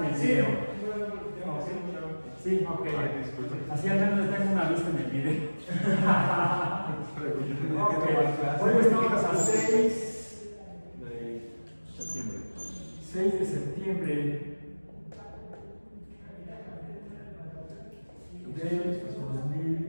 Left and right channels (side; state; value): both; inverted; correlation -1.00